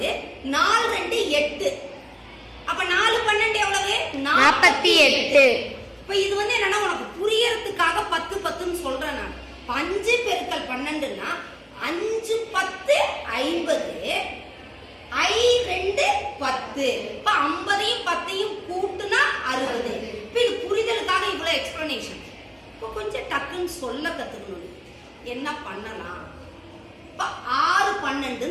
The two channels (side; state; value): both; identical; correlation 1.00